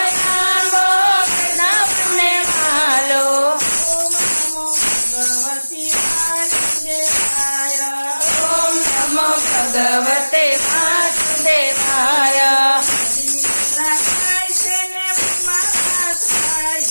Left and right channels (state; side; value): inverted; both; correlation -1.00